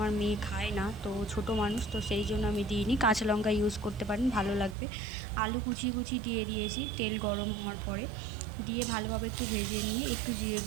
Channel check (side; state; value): left; drops out; at 4.8 s